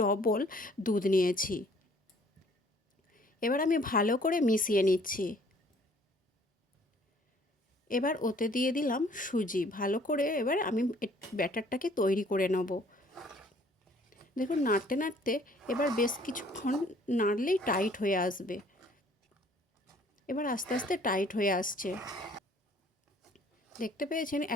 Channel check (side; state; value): both; normal; correlation 0.58